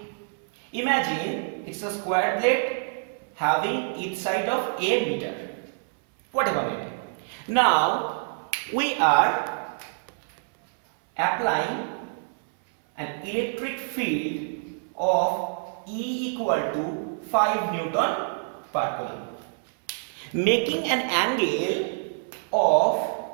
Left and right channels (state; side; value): silent; left; 61 dB below the other